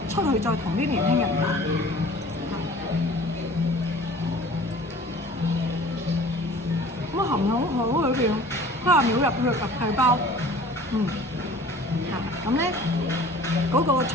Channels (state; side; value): normal; both; correlation 0.46